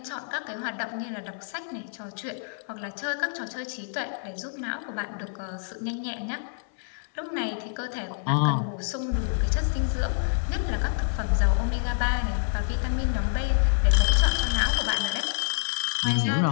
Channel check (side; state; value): right; silent; 60 dB below the other